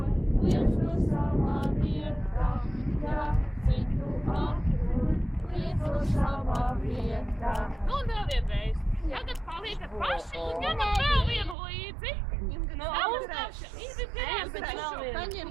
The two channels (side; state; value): left; drops out; at 11.6 s